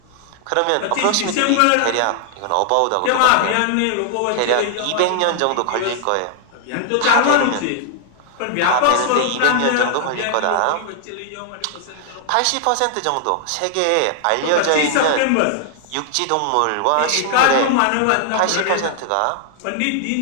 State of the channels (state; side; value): different; both; correlation 0.00